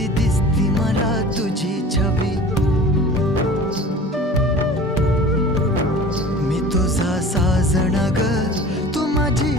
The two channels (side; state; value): both; normal; correlation 0.42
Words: दिसती मला तुझी छबी. मी तुझा साजण ग तू माझी